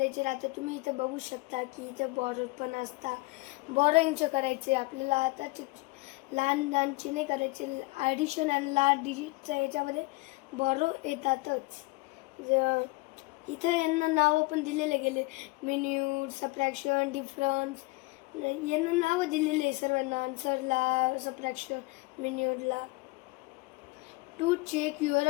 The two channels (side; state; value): right; quieter; 23.3 dB